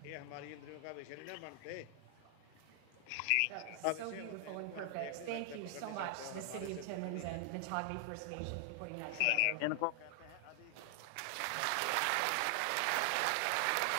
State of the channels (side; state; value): both; different; correlation 0.00